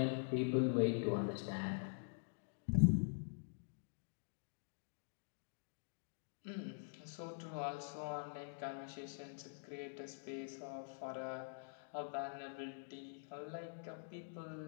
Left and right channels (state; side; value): silent; right; digital silence